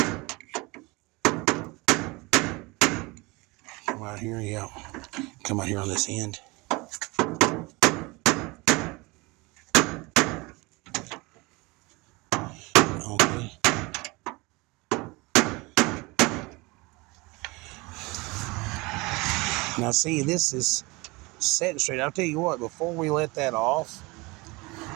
Come out here, yeah. Come out here on this end. Okay. Now see, this is setting straight. I'll tell you what, before we let that off,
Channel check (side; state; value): left; quieter; 24.7 dB